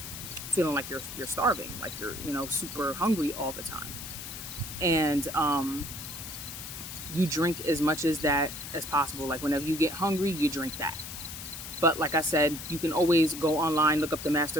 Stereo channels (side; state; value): left; noise; hiss, 9 dB below the sound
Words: feeling like you're starving, like you're super hungry all the time. And you drink as much as that as possible. Like whenever you get hungry, you drink that. But like I said, you can always go online, look up the